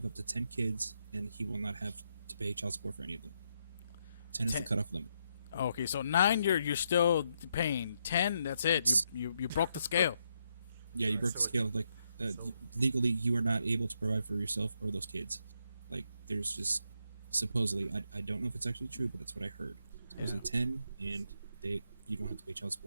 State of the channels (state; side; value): inverted; both; correlation -0.79